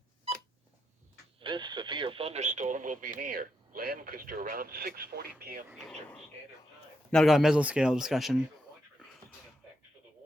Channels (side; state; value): both; normal; correlation 0.82